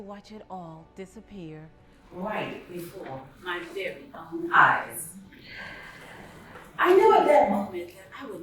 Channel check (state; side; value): identical; both; correlation 1.00